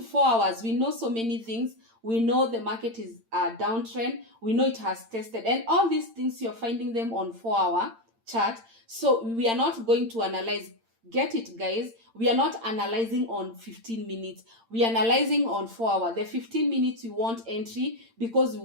4 hours, we know so many things. We know the market is a downtrend. We know it has tested. And all these things, you're finding them on 4-hour chart. So we are not going to analyze. Get it, guys? We are not analyzing on 15 minutes. We are analyzing on 4-hour. The 15 minutes, we want entry because we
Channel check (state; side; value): late; left; 8.8 ms